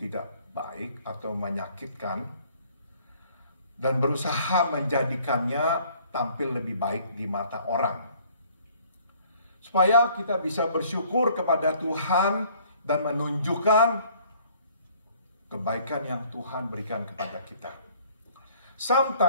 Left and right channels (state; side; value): inverted; both; correlation -0.58